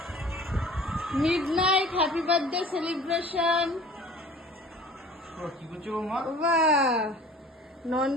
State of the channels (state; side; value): normal; both; correlation 0.45